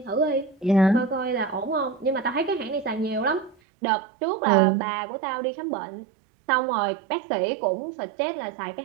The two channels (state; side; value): drops out; left; at 3.6 s